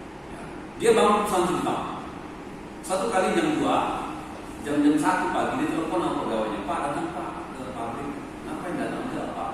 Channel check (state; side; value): identical; both; correlation 1.00